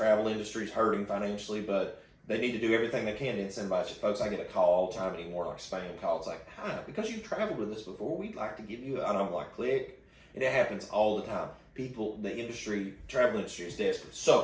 industry is hurting financially, but they need to do everything they can to incentivize you. Folks, I get a call all the time anymore, like spam call. It's like, hi, because you've traveled with us before, we'd like to give you, and I'm like, click. And it happens all the time. People, travel industry is desperate.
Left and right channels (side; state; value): both; identical; correlation 1.00